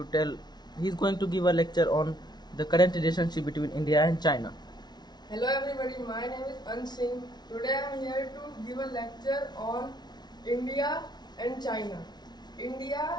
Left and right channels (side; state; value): right; late; 0.20 ms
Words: give a lecture on the current relationship between India and China. Hello everybody, my name is Ansing. Today I am here to give a lecture on India and China.